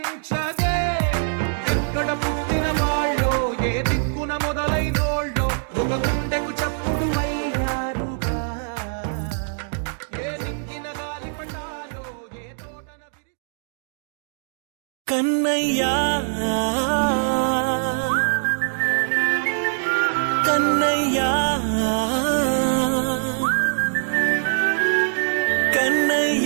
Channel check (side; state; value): left; silent; digital silence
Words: ఎక్కడ పుట్టిన వాళ్ళో ఏ దిక్కున మొదలైనోళ్ళో ఒక గుండెకు చప్పుడు అయ్యారుగా ఏ దింగిన గాలి పటాలో ఏ తోటన విరి కన్నయ్యా కన్నయ్యా